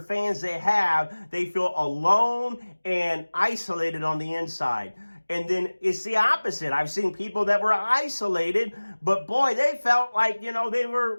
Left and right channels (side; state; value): both; inverted; correlation -1.00